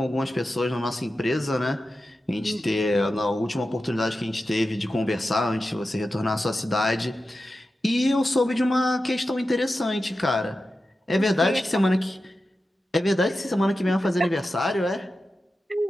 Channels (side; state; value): both; normal; correlation 0.92